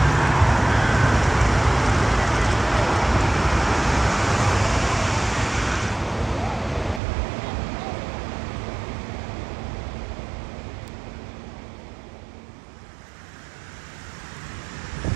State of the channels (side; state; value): left; drops out; at 7.0 s